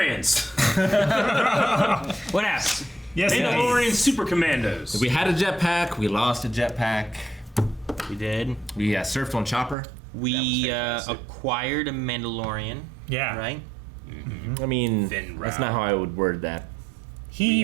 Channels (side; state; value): left; drops out; at 9.8 s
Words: What happened? Yes. Mandalorian Super Commandos. We had a jetpack. We lost a jetpack. We did. We surfed on Chopper. We fantastic. acquired a Mandalorian. Yeah. Right? I mean, Finn that's Rao. not how I would word that. He